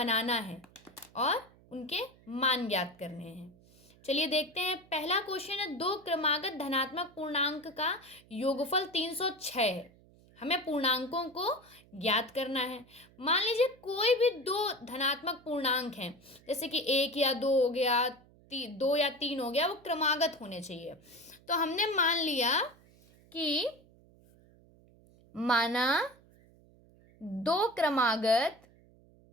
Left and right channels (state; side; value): noise; right; hum, 27 dB below the sound